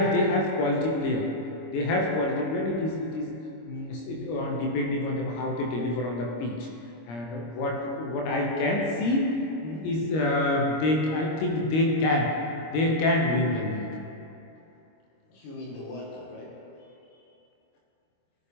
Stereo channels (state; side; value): late; right; 25 ms